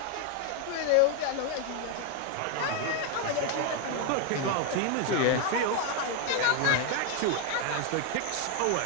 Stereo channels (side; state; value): both; different; correlation 0.01